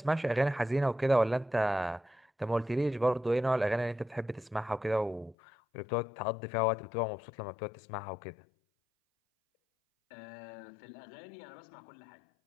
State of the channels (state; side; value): drops out; right; at 5.4 s